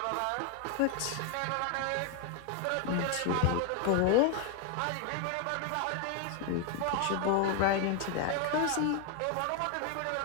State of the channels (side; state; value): both; different; correlation 0.01